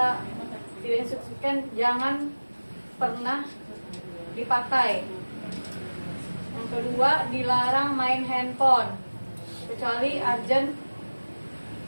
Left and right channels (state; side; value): inverted; both; correlation -1.00